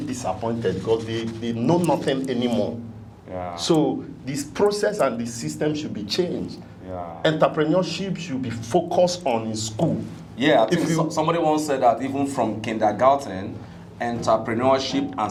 disappointed because they know nothing anymore. Yeah. So this process and the system should be changed. Yeah. Entrepreneurship should be focused on in school. Yeah, I think somebody once said that even from kindergarten, entrepreneurship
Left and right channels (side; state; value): both; identical; correlation 1.00